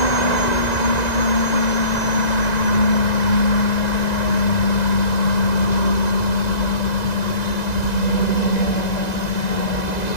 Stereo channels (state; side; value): late; right; 2.0 ms